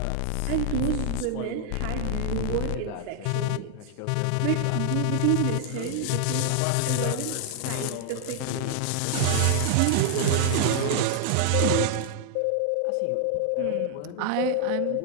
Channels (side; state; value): both; different; correlation 0.00